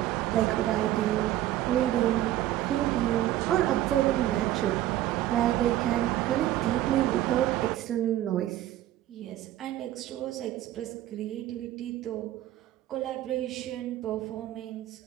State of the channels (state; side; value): quieter; left; 13.7 dB